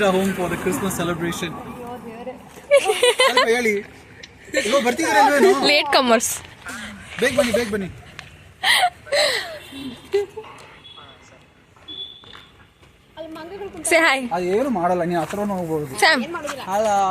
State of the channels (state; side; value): identical; both; correlation 1.00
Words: our home for the Christmas celebration. ಹೇಳಿ. ಇವಾಗ ಬರ್ತಿದ್ದೀರಲ್ವೇನು? Late comers. ಬೇಗ ಬನ್ನಿ. Say hi. ಏನು ಮಾಡಲ್ಲ, ನೀವು ಹತ್ರ ಹೋಗ್ಬೋದು. Sam.